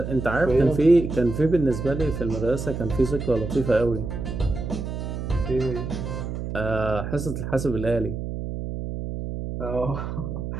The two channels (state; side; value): noise; right; hum, 5 dB below the sound